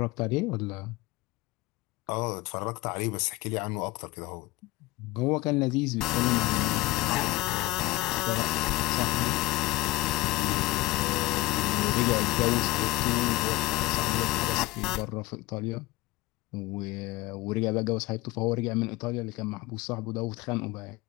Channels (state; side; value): quieter; right; 19.5 dB